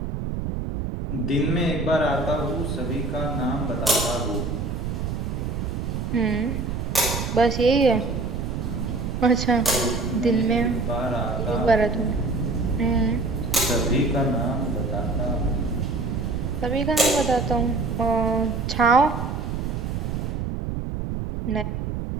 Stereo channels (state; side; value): noise; right; rumble, 3 dB below the sound